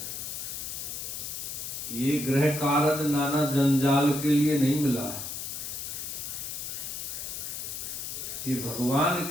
ये ग्रह कारज नाना जंजाल के लिए नहीं मिला है। ये भगवान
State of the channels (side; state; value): left; noise; hiss, 6 dB below the sound